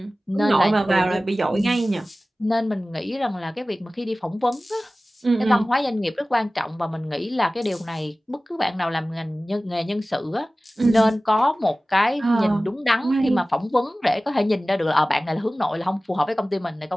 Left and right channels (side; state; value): both; normal; correlation 0.97